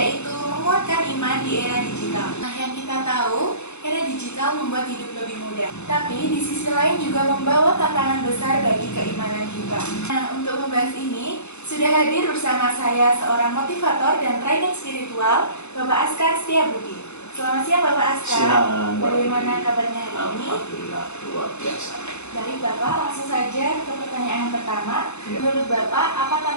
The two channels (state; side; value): late; right; 0.81 ms